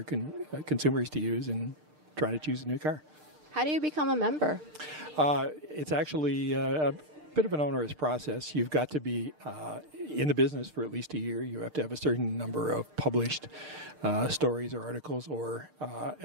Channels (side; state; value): left; late; 6.6 ms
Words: consumers to use in trying to choose a new car. How do you become a member? It's actually a bit of an onerous process. You've got to be in the business for at least a year. You have to have a certain number of published stories or articles, or